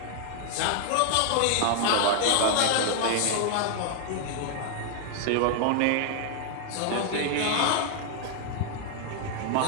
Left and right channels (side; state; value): both; different; correlation 0.00